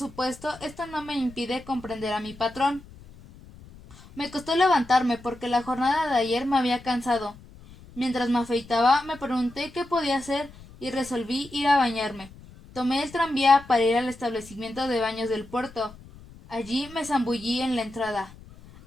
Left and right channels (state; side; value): noise; left; rumble, 20 dB below the sound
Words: esto no me impide comprender a mi patrón. Me costó levantarme porque la jornada de ayer me había cansado. Mientras me afeitaba, me pregunté qué podía hacer y resolví ir a bañarme. Tomé el tranvía para ir al establecimiento de baños del puerto. Allí me zambullí en la entrada.